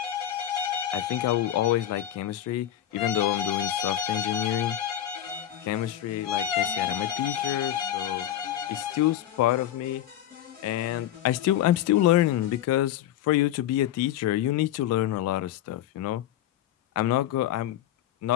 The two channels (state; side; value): quieter; right; 11.8 dB